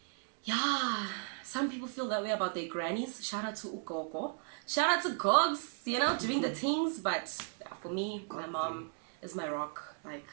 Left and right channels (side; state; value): left; silent; 54 dB below the other